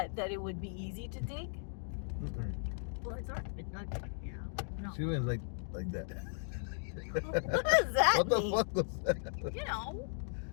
That it would be easy to dig? Mm-mm. Well, it's already been dug. No. She went like that. What does that What the mean? fuck was that?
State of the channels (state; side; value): silent; right; digital silence